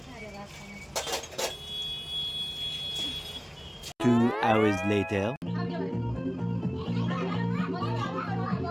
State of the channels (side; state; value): both; identical; correlation 1.00